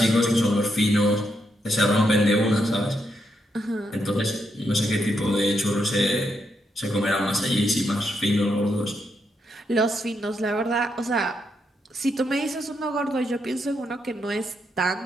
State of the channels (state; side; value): normal; both; correlation 0.80